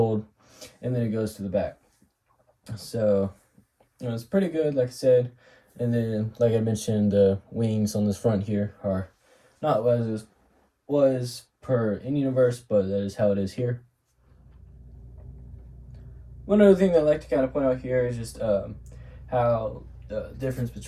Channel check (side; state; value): both; identical; correlation 1.00